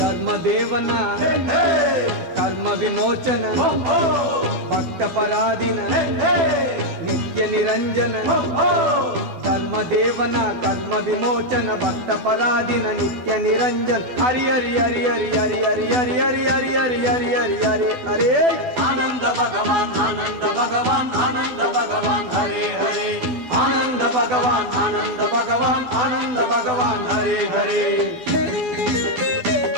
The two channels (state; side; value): late; left; 12 ms